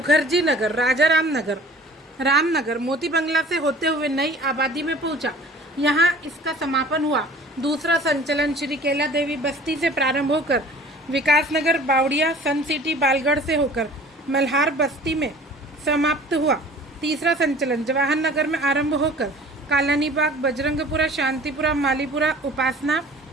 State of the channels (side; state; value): both; normal; correlation 0.47